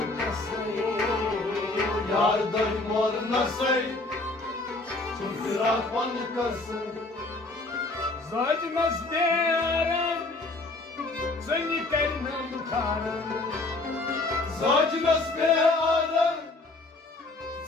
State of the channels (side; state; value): right; quieter; 3.1 dB